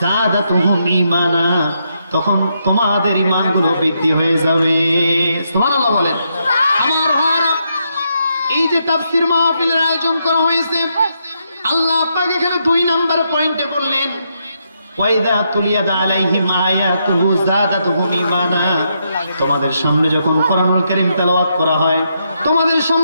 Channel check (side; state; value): both; inverted; correlation -0.79